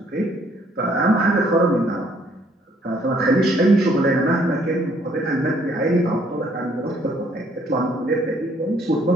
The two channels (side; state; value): both; normal; correlation 0.64